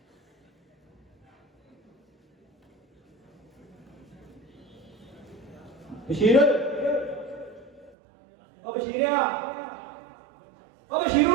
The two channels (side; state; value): left; drops out; at 8.0 s